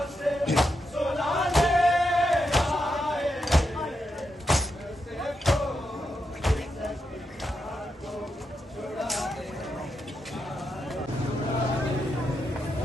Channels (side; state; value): both; normal; correlation 0.85